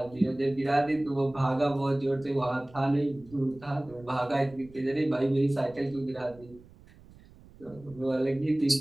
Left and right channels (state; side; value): noise; right; rumble, 23 dB below the sound